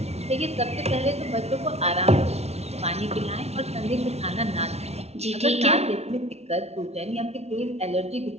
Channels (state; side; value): late; left; 0.31 ms